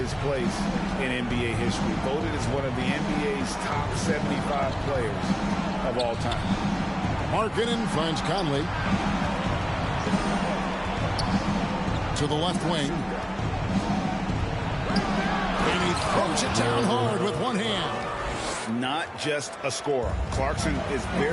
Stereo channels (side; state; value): both; identical; correlation 1.00